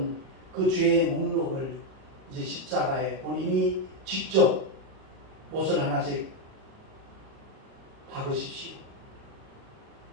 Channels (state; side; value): late; left; 37 ms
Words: 그 죄의 목록을 이제 십자가에 본인이 직접 못을 하나씩 박으십시오.